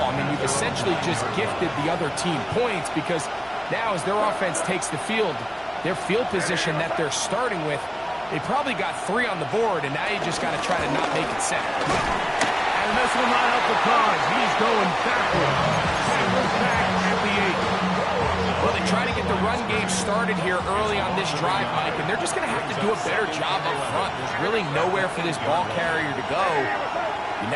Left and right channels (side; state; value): both; identical; correlation 1.00